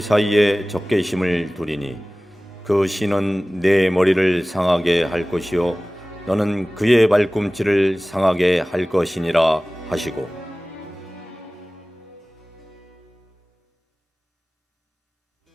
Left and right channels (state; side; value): normal; both; correlation 0.98